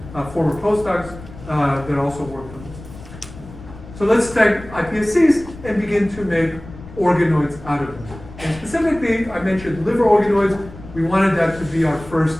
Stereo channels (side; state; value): left; noise; rumble, 16 dB below the sound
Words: former postdocs that also worked on this. So let's take iPSCs and begin to make organoids out of them. And specifically, I mentioned liver organoids. We wanted that to be our first